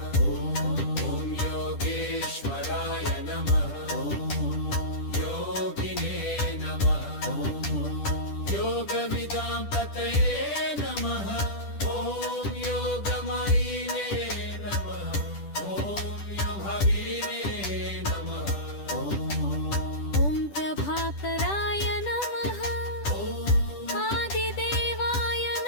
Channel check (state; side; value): late; right; 10 ms